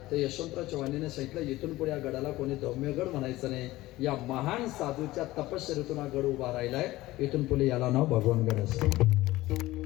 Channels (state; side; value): quieter; right; 17.7 dB